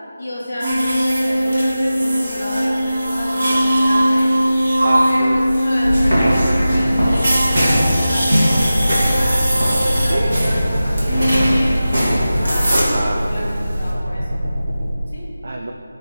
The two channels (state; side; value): inverted; both; correlation -0.95